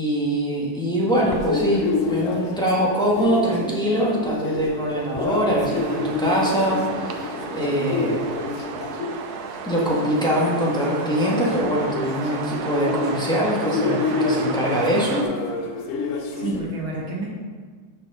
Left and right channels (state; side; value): normal; both; correlation 0.09